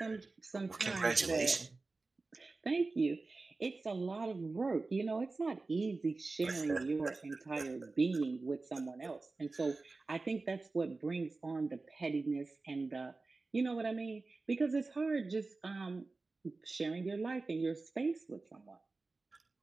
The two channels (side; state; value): left; quieter; 3.6 dB